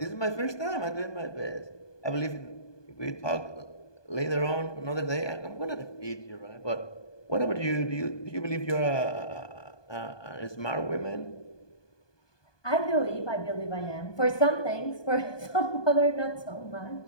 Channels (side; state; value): right; late; 1.2 ms